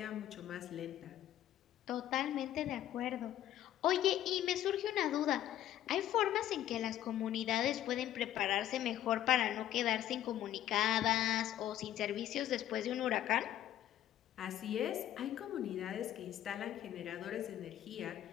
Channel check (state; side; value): quieter; right; 12.3 dB